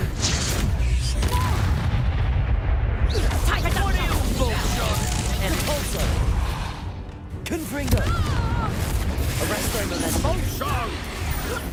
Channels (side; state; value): both; identical; correlation 1.00